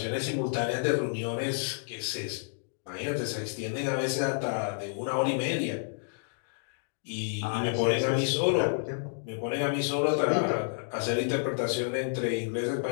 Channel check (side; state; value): right; silent; digital silence